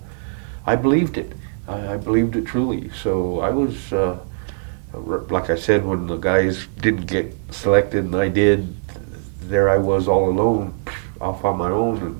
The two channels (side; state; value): left; silent; digital silence